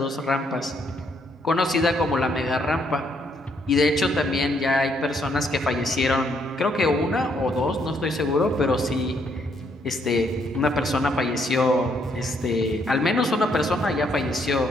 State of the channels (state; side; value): normal; both; correlation 0.72